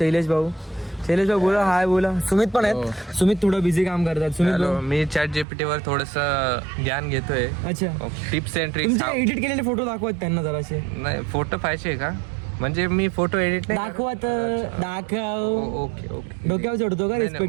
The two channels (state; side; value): drops out; left; at 5.5 s